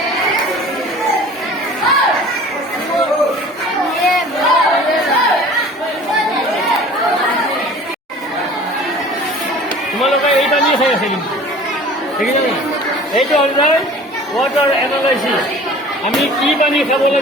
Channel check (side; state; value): both; normal; correlation 0.45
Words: তোমালোকে এই পানী খাই আছে কিন্তু দেখিছা নাই? এইটো হ'ল যায় ৱাটাৰ এনালাইচিছ। আমি কি পানী খাব